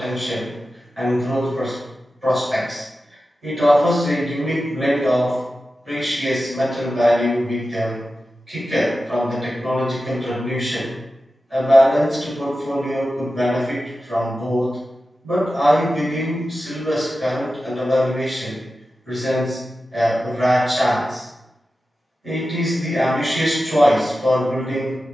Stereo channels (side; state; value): both; normal; correlation 0.93